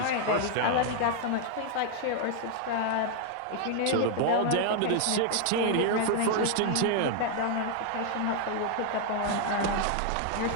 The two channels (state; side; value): different; both; correlation 0.00